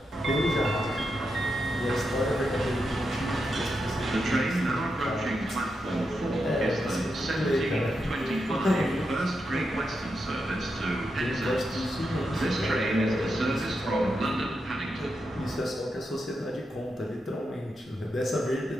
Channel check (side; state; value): both; normal; correlation 0.86